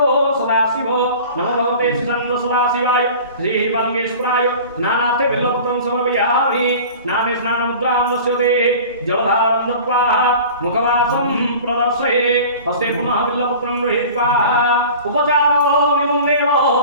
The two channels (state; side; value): inverted; both; correlation -0.40